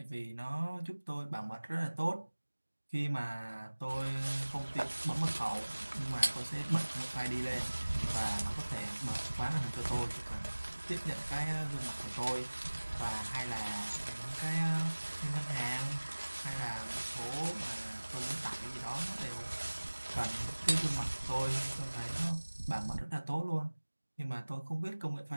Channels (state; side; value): inverted; both; correlation -1.00